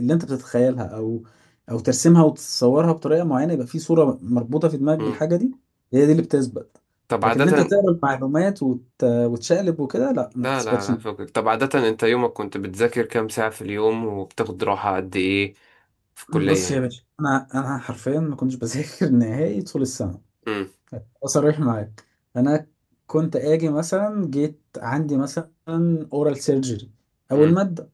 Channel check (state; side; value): identical; both; correlation 1.00